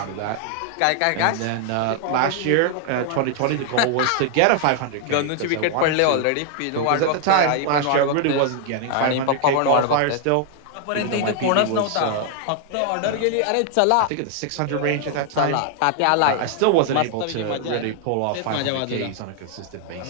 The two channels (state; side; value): different; both; correlation 0.00